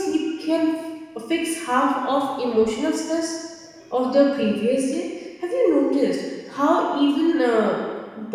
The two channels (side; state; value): both; identical; correlation 1.00